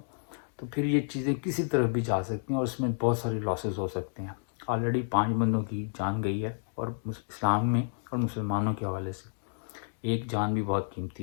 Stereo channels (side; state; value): right; silent; digital silence